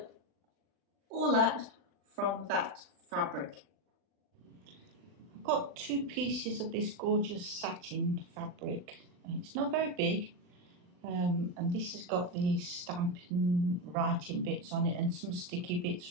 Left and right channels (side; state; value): left; late; 40 ms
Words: all that from that fabric. I've got 2 pieces of this gorgeous satin fabric. It's not very big, and this has got the stamping writing bits on it and some sticky bits